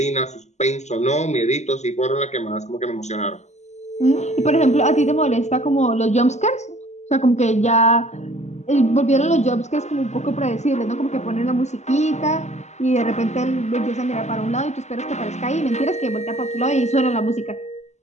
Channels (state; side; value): late; right; 0.33 ms